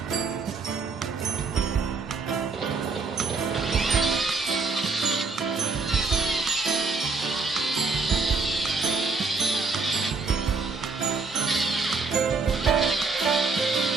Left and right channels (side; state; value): left; quieter; 4.2 dB